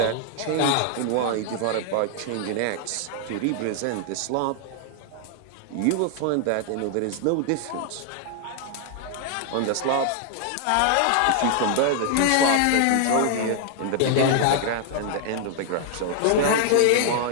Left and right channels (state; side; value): different; both; correlation 0.00